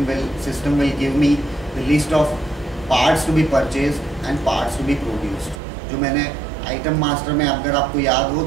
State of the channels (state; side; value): drops out; left; at 5.6 s